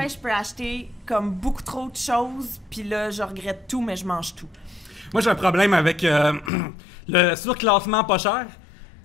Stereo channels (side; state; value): right; drops out; at 6.5 s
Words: je peux acheter comme beaucoup trop de choses, puis là, je regrette tout, mais je mange tout. Moi, j'ai un problème avec le surclassement pas cher.